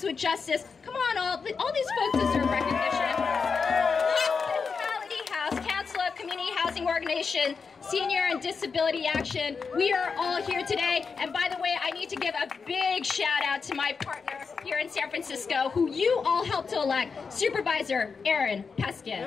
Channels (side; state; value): right; quieter; 5.3 dB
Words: with Justice. Come on, all these folks deserve recognition. Council of Community Housing Organization, Senior and Disability Action. We are all here today. And by the way, I need to give a big shout out to my partner here in San Francisco, who you all helped to elect, Supervisor Aaron